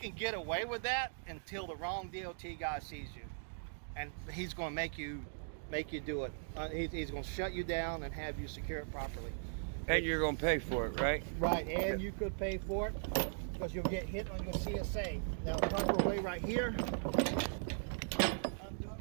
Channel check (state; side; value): silent; left; digital silence